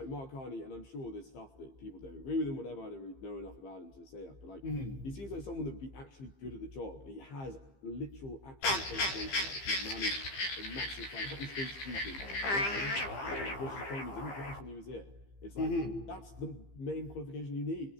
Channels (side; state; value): right; late; 15 ms